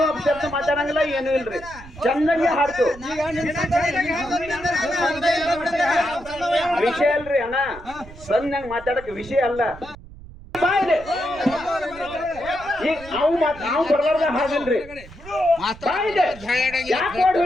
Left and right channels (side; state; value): right; noise; rumble, 18 dB below the sound